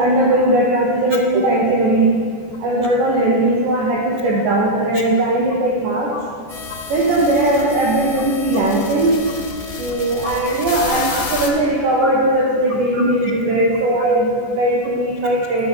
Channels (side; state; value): left; late; 14 ms